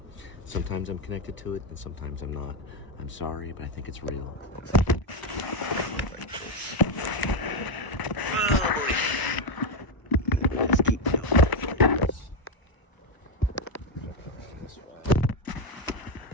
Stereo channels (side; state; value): right; late; 1.0 ms